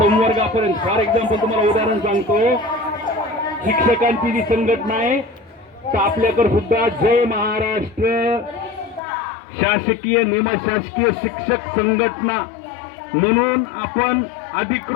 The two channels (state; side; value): drops out; right; at 9.0 s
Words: फॉर एक्झाम्पल तुम्हाला उदाहरण सांगतो, शिक्षकांची जी संघटना आहे तर आपल्याकडे सुद्धा जय महाराष्ट्र शासकीय निमशासकीय शिक्षक संघटना म्हणून आपण